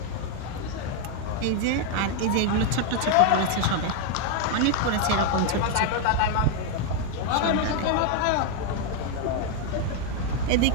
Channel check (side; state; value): both; different; correlation 0.01